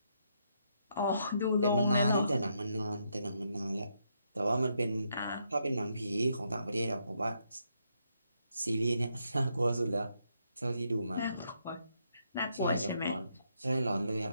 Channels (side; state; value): both; inverted; correlation -0.77